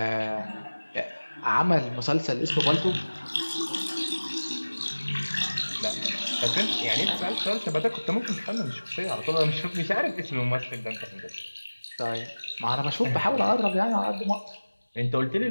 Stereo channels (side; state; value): both; inverted; correlation -1.00